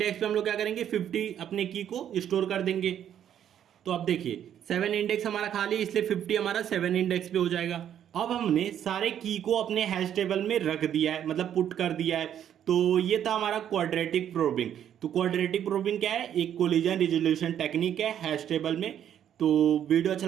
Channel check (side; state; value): left; quieter; 9.9 dB